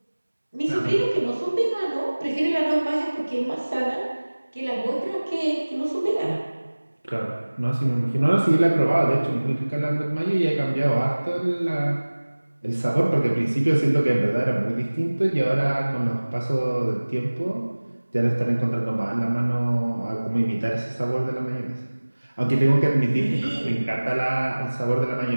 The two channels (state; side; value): inverted; both; correlation -1.00